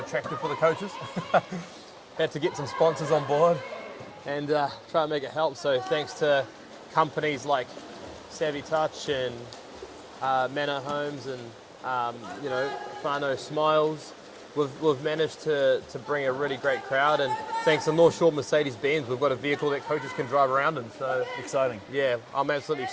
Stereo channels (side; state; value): both; identical; correlation 1.00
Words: for the coaches. Had to get some sponsors on board and try and make it help. So thanks to companies like Savvy Touch and Manor Homes and Whānau Smiles, we've managed to bring a really great crowd. And thanks to North Shore Mercedes-Benz, we've got a vehicle that coaches can drive around in. So exciting. Yeah, I'm absolutely